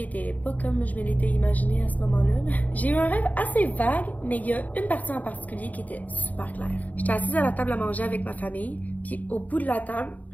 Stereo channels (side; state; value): right; late; 0.076 ms